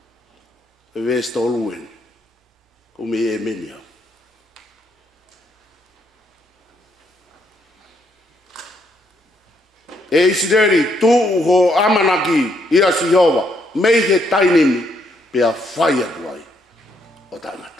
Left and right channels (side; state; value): both; normal; correlation 0.73